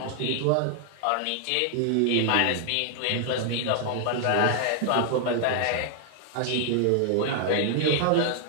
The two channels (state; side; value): different; both; correlation 0.00